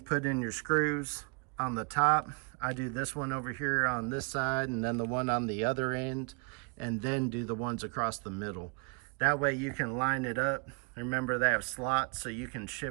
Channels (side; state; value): left; quieter; 34.8 dB